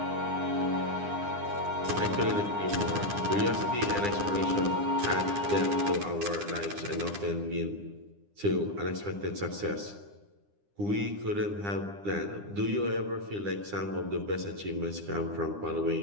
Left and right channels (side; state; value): left; late; 9.9 ms